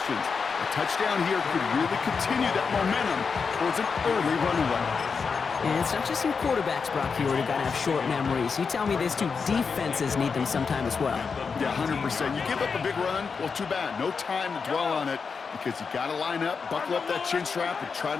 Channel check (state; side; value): quieter; right; 5.4 dB